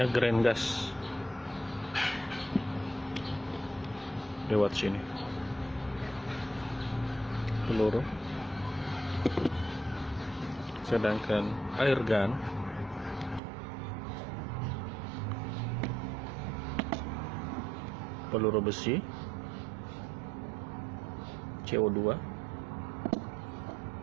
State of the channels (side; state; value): left; drops out; at 13.4 s